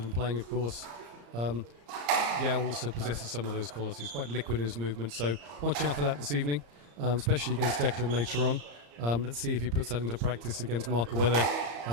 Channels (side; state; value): left; late; 34 ms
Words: and playing, of course. Yow also possesses some of those qualities, quite liquid in his movement, so watch out for that this evening, especially against Declan later on. Let's see if he puts that into practice against Mark, or whether,